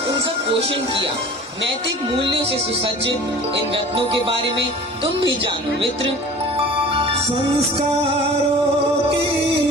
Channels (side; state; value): both; normal; correlation 0.42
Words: उनका पोषण किया। नैतिक मूल्यों से सुसज्जित इन रत्नों के बारे में तुम भी जानो मित्र। संस्कारों की